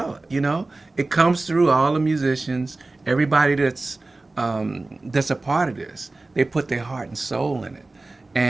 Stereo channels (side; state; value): left; quieter; 3.2 dB